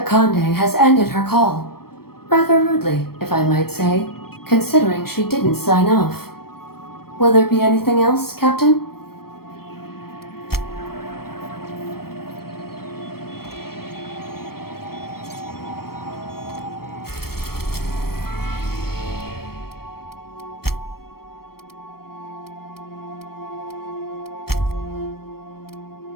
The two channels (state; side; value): late; right; 0.94 ms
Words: has ended her call. Rather rudely, if I might say, considering she didn't sign off. Will there be anything else, Captain?